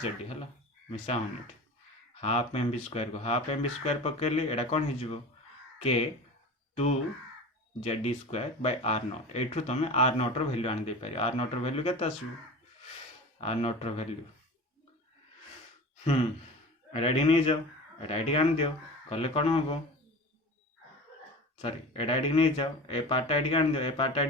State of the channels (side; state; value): both; normal; correlation 0.34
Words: Z e हला मिसा होनेट हाफ mv स्क्वायर को हाफ mv स्क्वायर पकेली एडा कौन हो के 2 Z e square by r naught एठू तुम r नॉट रो वैल्यू आन दे पारी r नॉट रो वैल्यू केते आसु r नॉट रो वैल्यू ଏଇଟା ଏଠି ନେଇଯାଅ, ଏଇଟା ଏଠିକି ଆଣିଦିଅ, କଲେ କ'ଣ ହେବ? ସରି, ଏଇଟା ଏଠିକି ନେଇଯାଅ, ଏ ପାର୍ଟଟା ଏଠିକି ଆଣିଦିଅ, ଏ ପାର୍ଟଟା